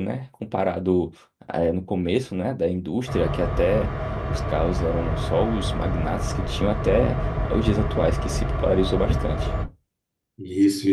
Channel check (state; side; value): identical; both; correlation 1.00